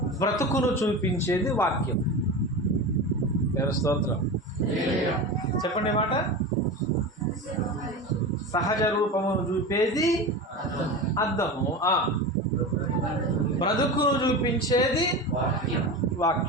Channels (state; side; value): normal; both; correlation 0.26